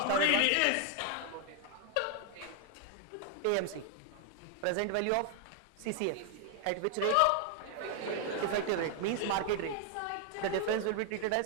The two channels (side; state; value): both; different; correlation 0.00